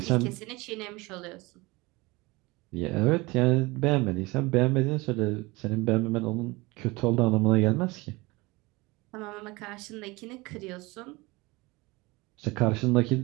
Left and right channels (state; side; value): quieter; left; 23.3 dB